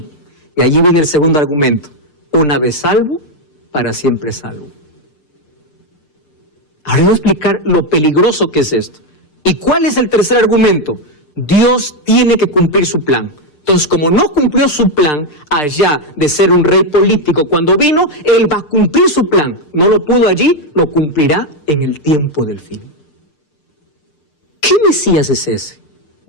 Y allí viene el segundo argumento. Una vez salvo, para siempre salvo. Ahora voy a explicar lo peligroso que es esto. ¿Y cuál es el tercer argumento? Dios tiene que cumplir su plan. Entonces, como no cumplió su plan allá de ser un rey político cuando vino, Él va a cumplir su plan. No lo pudo allí, lo cumplirá en el tiempo del fin. ¿Qué Mesías es ese?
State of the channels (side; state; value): right; late; 6.7 ms